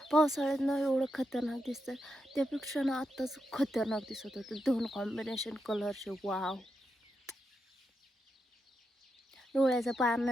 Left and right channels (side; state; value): both; normal; correlation 0.85